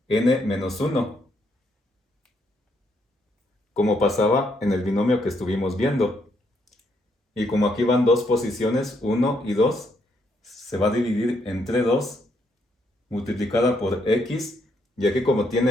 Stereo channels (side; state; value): both; normal; correlation 0.74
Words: n menos 1, como pasaba en el binomio que estuvimos viendo. Y como aquí van dos posiciones, 1 y 2, se va a dividir entre 2, multiplicada por x, y aquí como